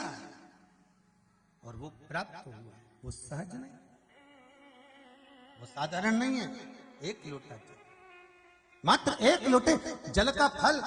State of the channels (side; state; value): both; identical; correlation 1.00